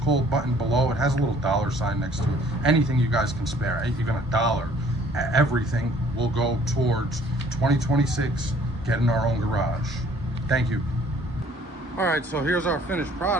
button below. It has a little dollar sign next to it. Anything you guys can spare, even $1, everything will go towards 2026 getting our own garage. Thank you. All right, so here's our finished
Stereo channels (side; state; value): both; normal; correlation 0.57